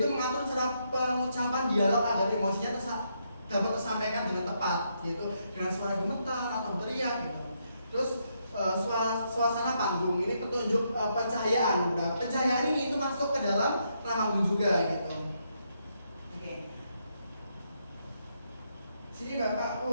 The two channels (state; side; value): inverted; both; correlation -0.78